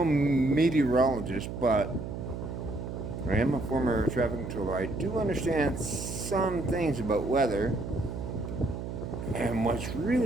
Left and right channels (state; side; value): noise; right; hum, 6 dB below the sound